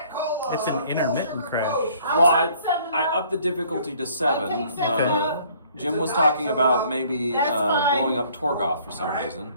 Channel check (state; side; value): inverted; both; correlation -0.59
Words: Cola. It's an intermittent crash. Well, I want 7-Up. upped the difficulty to 7. I'll take 7-Up. Jim was talking about maybe That's fine. blowing up Torgoth for some reason,